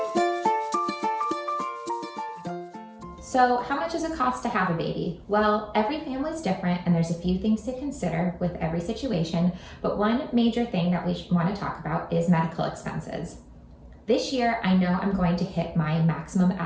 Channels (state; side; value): identical; both; correlation 1.00